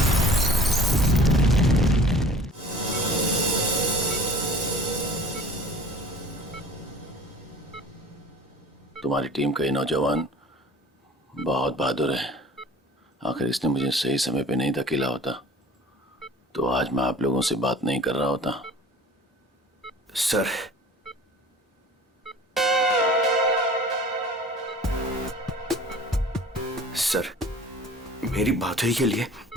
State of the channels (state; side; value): normal; both; correlation 0.46